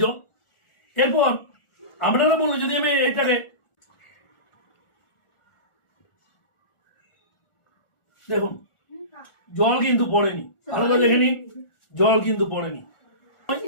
জল। এরপর আপনারা বলুন, যদি আমি এটাকে দেখুন, জল কিন্তু পড়েনি, ভালো করে দেখে নিন, জল কিন্তু পড়েনি।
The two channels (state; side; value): late; right; 1.4 ms